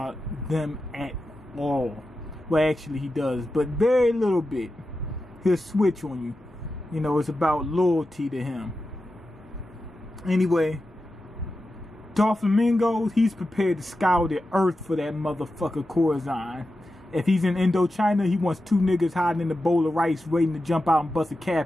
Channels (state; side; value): normal; both; correlation 0.91